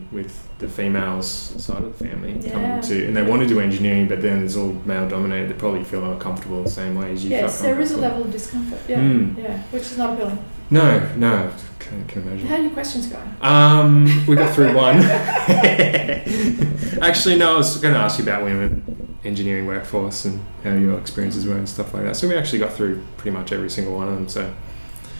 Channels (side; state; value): both; inverted; correlation -1.00